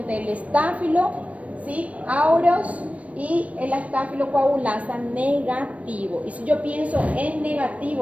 el estáfilo, ¿sí? Aureus y el estáfilo coagulasa negativo. Y si yo pienso en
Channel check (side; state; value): left; late; 0.066 ms